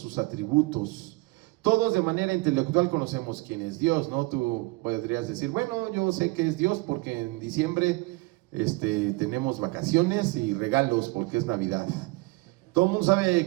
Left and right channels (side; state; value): left; quieter; 24.2 dB